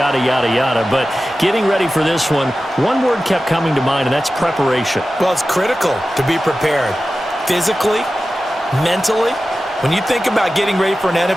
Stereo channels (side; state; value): both; normal; correlation 0.94